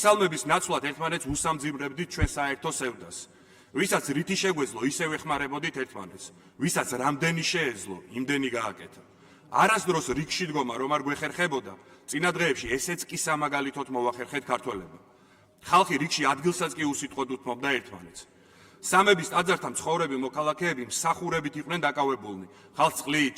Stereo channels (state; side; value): identical; both; correlation 1.00